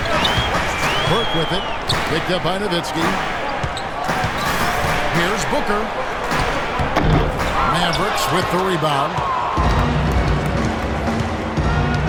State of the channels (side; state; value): both; identical; correlation 1.00